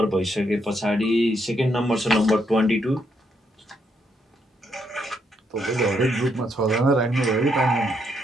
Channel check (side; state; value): both; normal; correlation 0.76